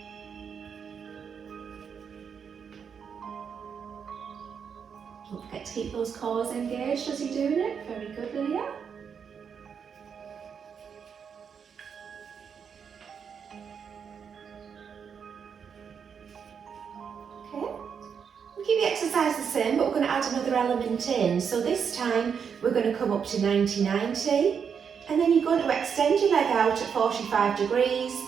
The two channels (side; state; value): left; quieter; 6.9 dB